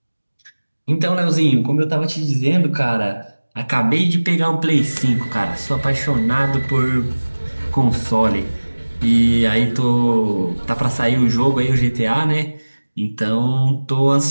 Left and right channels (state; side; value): inverted; both; correlation -1.00